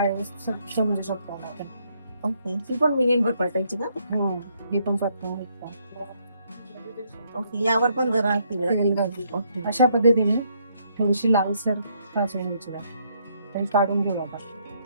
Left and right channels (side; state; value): both; inverted; correlation -0.72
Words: समजू शकतो आपण. ओके, ती पण मिनिटभर परतायची का? हो, ही पण परतून घेतो. ओके, यावर पण जरा तेल घालून. ओके, अशा पद्धतीने थोडीशी लालसर भाजून घ्यायची डाळ. आणि काढून घेऊ आता.